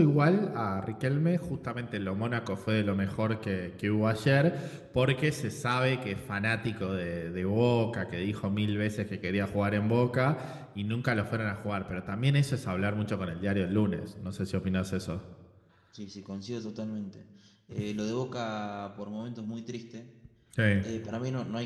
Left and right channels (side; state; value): both; identical; correlation 1.00